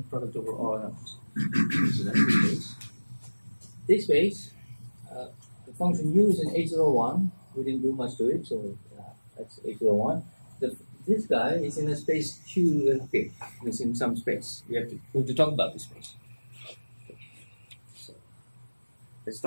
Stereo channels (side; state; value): both; inverted; correlation -1.00